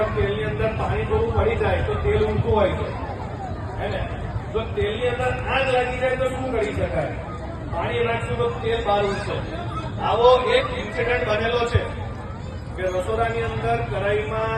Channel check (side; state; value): both; identical; correlation 1.00